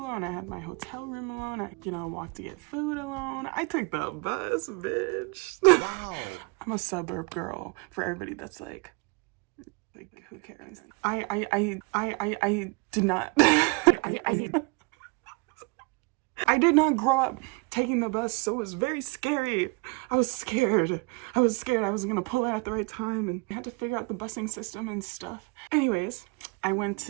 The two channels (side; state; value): left; quieter; 28.5 dB